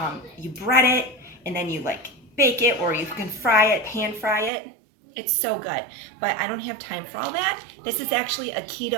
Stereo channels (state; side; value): drops out; left; at 4.5 s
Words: you bread it and then you like bake it, or you can fry it, pan fry it. It's so good, but I don't have time for all that. This is actually a